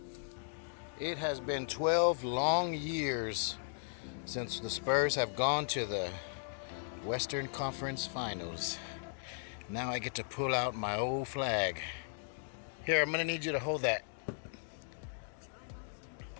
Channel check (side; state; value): right; silent; digital silence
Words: It has been 12 long years since the Spurs have gone to the Western Conference Finals. Now I get to pull out my old flag. Here, I'm gonna need you to hold that.